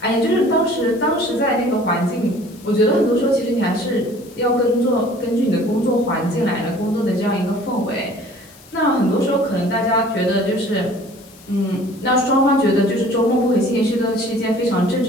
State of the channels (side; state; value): left; noise; hiss, 24 dB below the sound